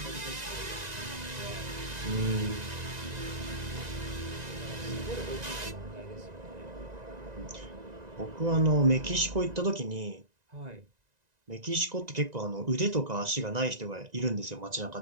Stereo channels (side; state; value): left; late; 1.9 ms